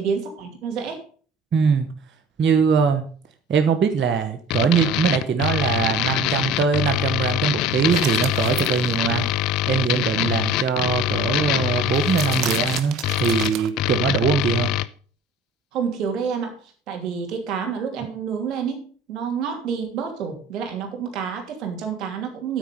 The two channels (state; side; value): normal; both; correlation 0.43